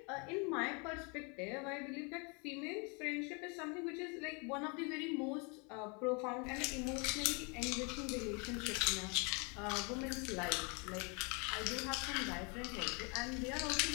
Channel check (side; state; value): right; quieter; 33.0 dB